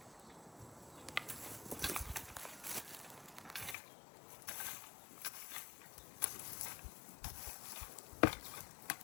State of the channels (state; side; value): drops out; right; at 3.8 s